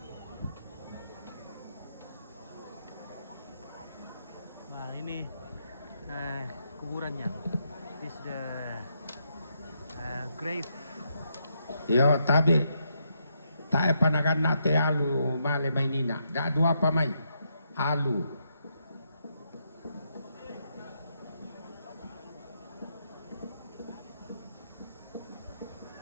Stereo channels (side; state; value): both; inverted; correlation -0.79